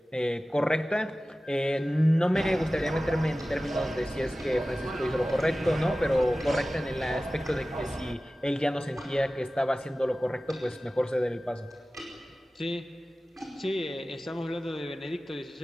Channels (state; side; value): normal; both; correlation 0.96